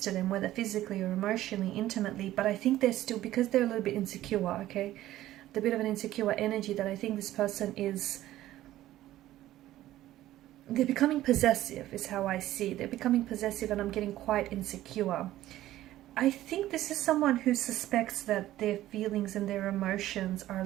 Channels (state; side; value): quieter; left; 14.4 dB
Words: to them, whether physically or emotionally, intimately, but I think they're still, because they're a little bit insecure, okay, the bit of an insecure energy, that I think this person is, they're becoming possessive is how I see. They're becoming possessive, and I'm getting quite insecure. I think this is someone who suspects that their feelings and their emotions are a